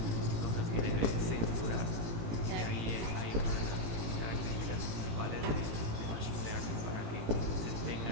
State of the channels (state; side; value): late; left; 18 ms